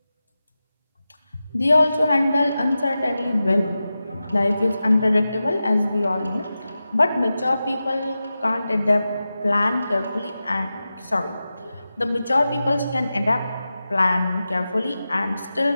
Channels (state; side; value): inverted; both; correlation -0.93